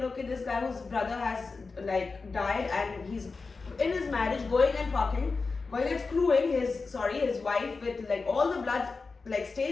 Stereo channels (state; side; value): quieter; right; 4.2 dB